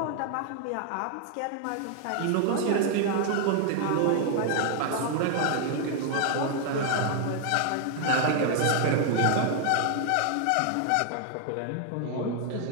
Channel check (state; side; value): different; both; correlation 0.00